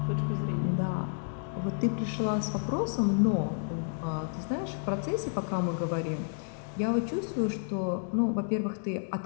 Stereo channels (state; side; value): silent; right; digital silence